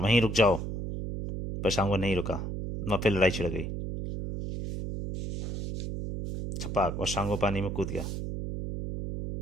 रुक जाओ। पर शांगो नहीं रुका। वहां फिर लड़ाई छिड़ गई। छपाक, और शांगो पानी में कूद गया,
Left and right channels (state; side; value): noise; right; hum, 4 dB below the sound